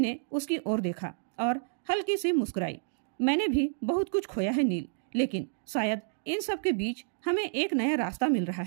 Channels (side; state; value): left; silent; digital silence